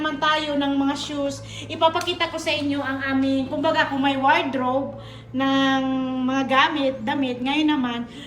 tayo ng mga shoes, ipapakita ko sa inyo ang aming, kumbaga kung may wardrobe ng mga damit, ngayon naman,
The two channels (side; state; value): both; identical; correlation 1.00